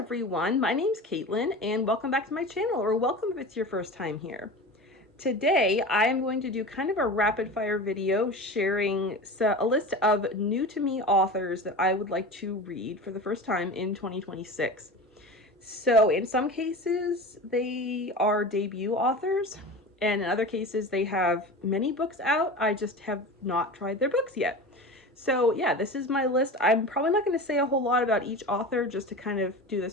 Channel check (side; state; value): both; normal; correlation 0.32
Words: my name's Caitlyn and welcome back to my channel, or welcome if it's your first time here. Today I am going to do kind of a rapid fire video sharing a list of new to me authors that I would like to read for the first time in 2026. So in some cases they are debut authors, and in other cases they have many books out. I just have not tried their books yet. So yeah, this is my list. I'm probably not going to say a whole lot about each author just to kind of do